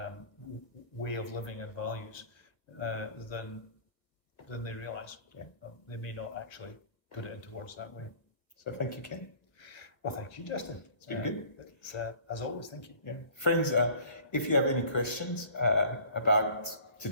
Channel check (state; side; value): late; right; 1.3 ms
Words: way of living and values than they realise. Yeah. They may not actually put it into words that way. So thank you, Ken. Well, thank you, Justin. It's been good. It's, as always, thank you. Yeah. Friends, if you have any questions about